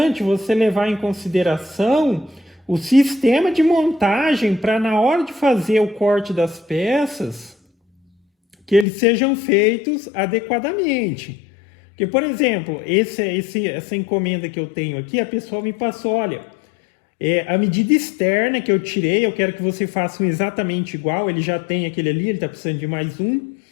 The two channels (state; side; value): drops out; right; at 8.8 s